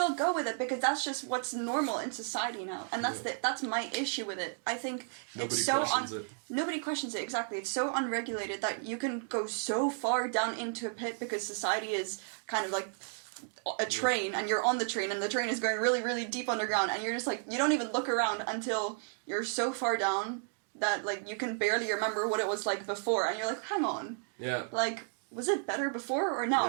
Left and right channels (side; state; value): left; silent; 56 dB below the other